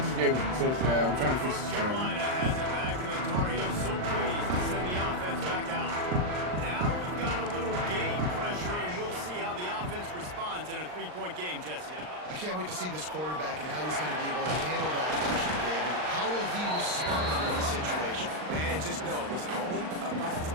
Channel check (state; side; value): late; left; 39 ms